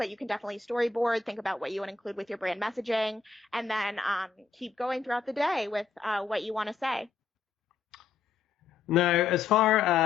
you can definitely storyboard, think about what you want to include with your brand messaging, and then keep going throughout the day with what you want to say. Now, as far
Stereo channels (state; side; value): quieter; right; 5.0 dB